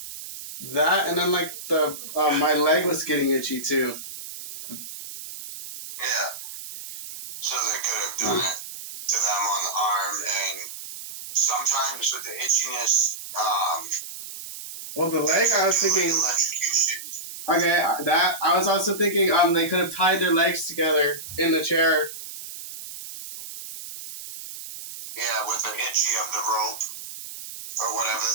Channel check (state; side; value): noise; right; hiss, 11 dB below the sound